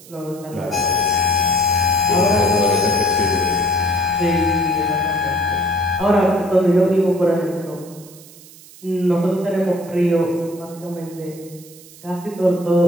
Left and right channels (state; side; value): noise; right; hiss, 21 dB below the sound